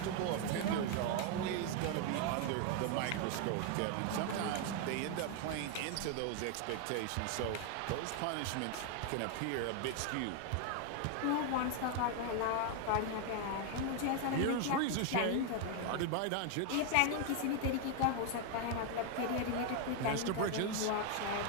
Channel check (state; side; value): different; both; correlation 0.01